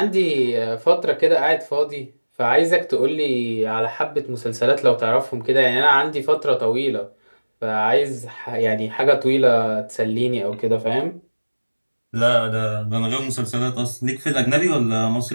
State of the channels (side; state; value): both; inverted; correlation -1.00